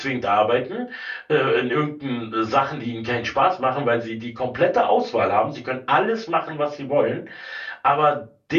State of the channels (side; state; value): both; identical; correlation 1.00